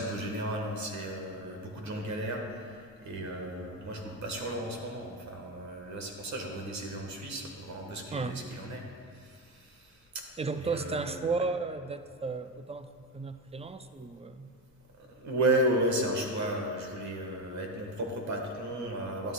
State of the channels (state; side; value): normal; both; correlation 0.14